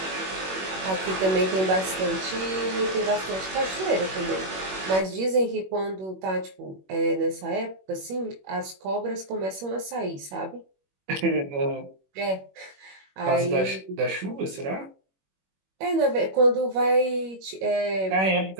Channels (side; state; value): left; late; 21 ms